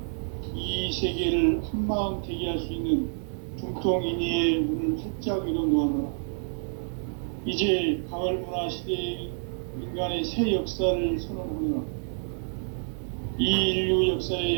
이 세계를 한마음 되게 할 수 있는 중통인의의 문을 활짝 열어놓았노라. 이제 가을문화 시대의 인간의 새 역사를 선언하노라. 이 인류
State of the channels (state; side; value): silent; left; digital silence